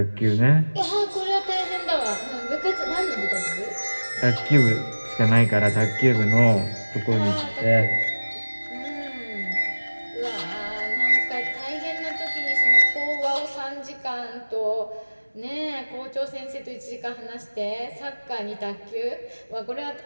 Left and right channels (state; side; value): inverted; both; correlation -1.00